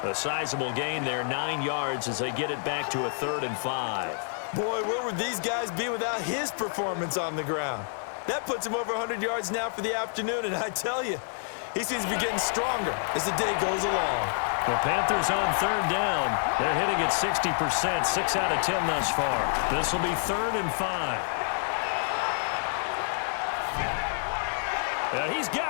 A sizable gain there, 9 yards as they get it back to a 3rd and 5. Boy, where would these guys be without his performance on the ground? That puts him over 100 yards now for the afternoon, and I tell you, he seems to be getting stronger as the day goes along. The Panthers on 3rd down. They're hitting at 60%, 6 out of 10 thus far. This will be 3rd and 5. He's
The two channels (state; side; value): silent; right; digital silence